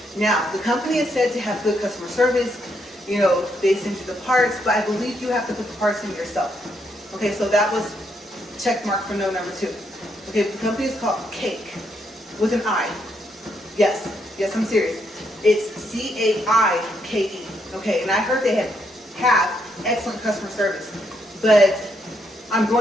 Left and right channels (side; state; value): both; normal; correlation 0.76